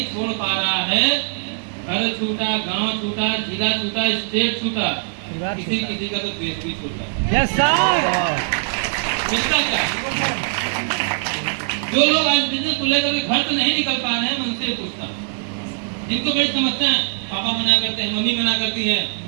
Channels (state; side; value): silent; left; digital silence